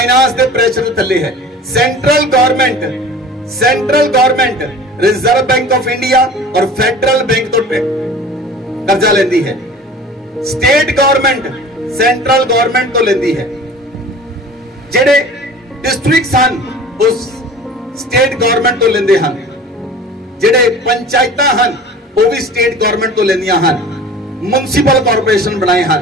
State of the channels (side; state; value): both; normal; correlation 0.41